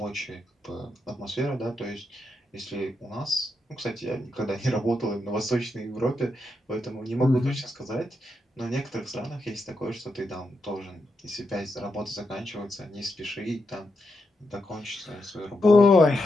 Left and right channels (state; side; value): normal; both; correlation 0.84